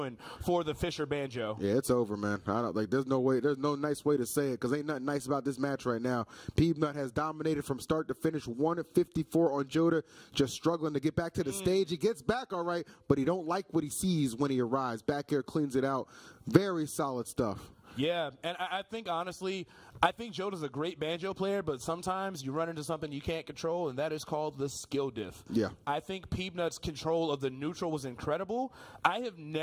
for the Fisher Banjo. Yeah, it's over, man. I don't like. There's no way. There's no nice way to say it, because ain't nothing nice about this match right now. Peanut has dominated from start to finish. 1-54 on Joda, just struggling to get back to the stage. He gets back all right, but he don't like what he sees when he arrives. Back here cleans it out. Very solid stuff. Yeah, and I think, honestly, I think Joda's a great banjo player, but sometimes you run into something you can't control, and that is called the skill diff. Yeah. I think Peanut's control of the neutral was incredible. I have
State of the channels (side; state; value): both; identical; correlation 1.00